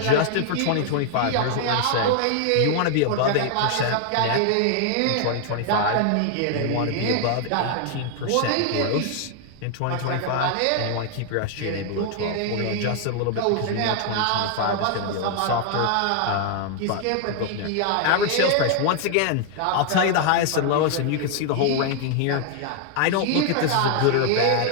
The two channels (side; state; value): both; different; correlation 0.00